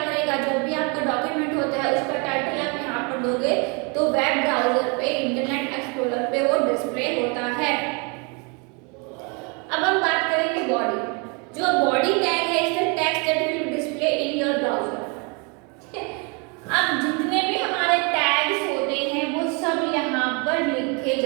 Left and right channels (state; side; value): quieter; left; 32.8 dB